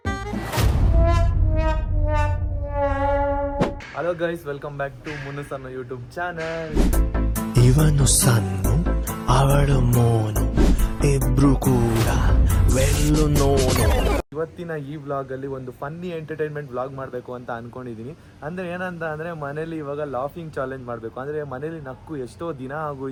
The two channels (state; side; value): identical; both; correlation 1.00